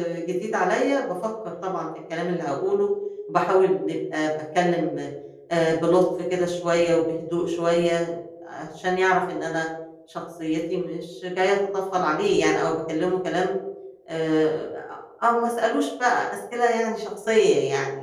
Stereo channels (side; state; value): both; identical; correlation 1.00